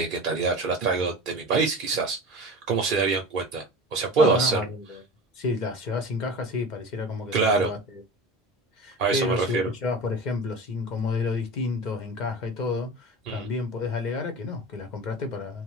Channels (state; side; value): normal; both; correlation 0.33